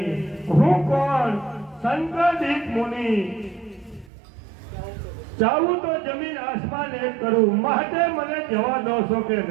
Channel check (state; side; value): drops out; left; at 4.1 s